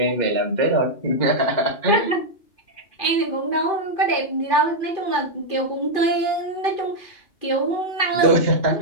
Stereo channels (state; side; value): late; right; 2.4 ms